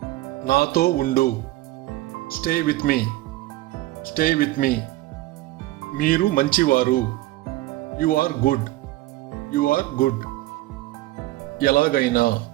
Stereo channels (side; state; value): left; quieter; 17.4 dB